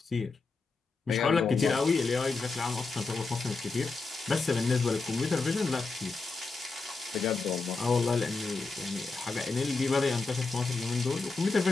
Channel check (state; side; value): quieter; right; 4.0 dB